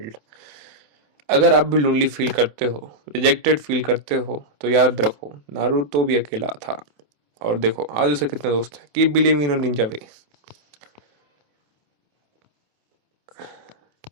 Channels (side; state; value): left; late; 27 ms